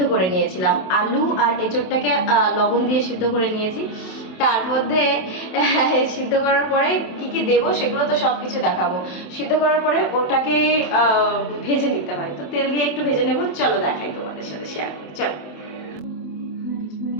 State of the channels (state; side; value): late; right; 27 ms